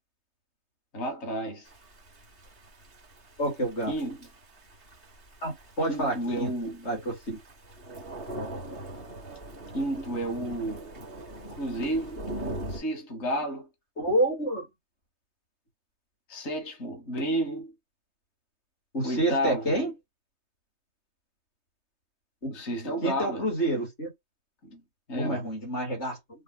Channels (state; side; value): late; right; 3.3 ms